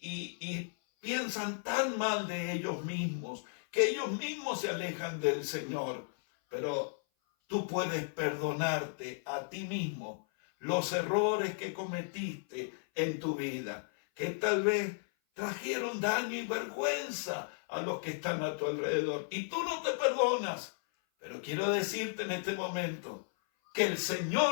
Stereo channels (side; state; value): right; silent; 55 dB below the other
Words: piensan tan mal de ellos mismos que ellos mismos se alejan del Señor. Pero tú puedes perdonarte a ti mismo los errores que cometiste en tu vida, que tal vez trajeron daño y vergüenza a los que están a tu alrededor. Y tú no te perdonas. Pero quiero decirte en este momento que el